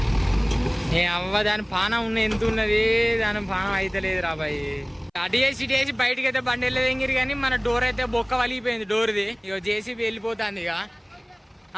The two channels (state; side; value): identical; both; correlation 1.00